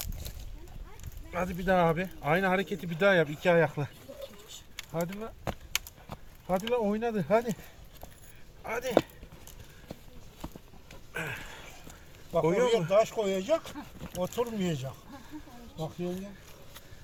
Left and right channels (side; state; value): both; identical; correlation 1.00